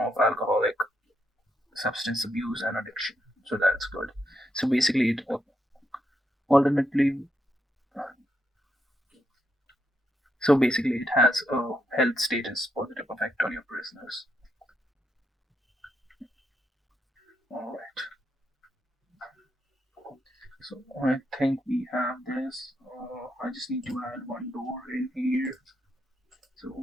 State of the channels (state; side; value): normal; both; correlation 0.80